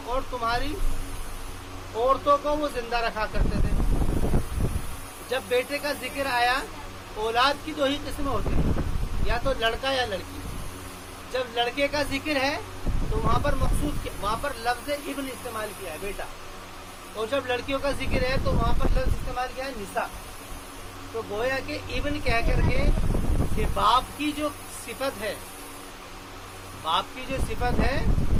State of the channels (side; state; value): both; identical; correlation 1.00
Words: اور تمہاری عورتوں کو وہ زندہ رکھا کرتے تھے. جب بیٹے کا ذکر آیا، اولاد کی دو ہی قسمیں ہوتی ہیں، یا تو لڑکا یا لڑکی. جب لڑکے کا ذکر ہے تو وہاں پر مقصود وہاں پر لفظ ابن استعمال کیا ہے، بیٹا. اور جب لڑکیوں کا ذکر ہے تو وہاں پر لفظ استعمال کیا ہے، نساء. تو گویا کہ ابن کہہ کر کے کہ باپ کی جو صفت ہے، باپ کی جو صفت ہے،